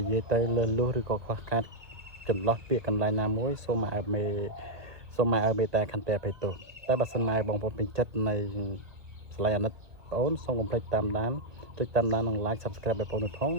ិយាយទៅលឺលុះឬក៏ខ្វះខាតចន្លោះពាក្យកន្លែងណាមួយសូមឲ្យមេតាខន្តីអភ័យទោសតែបើសិនមកឲ្យបងប្អូនពេញចិត្តនៃស្លាយអាណិតបងប្អូនសូមកុំភ្លេចតាមដានចុចតាមដាននិង like subscribe បងប្អូនផង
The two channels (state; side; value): late; left; 1.9 ms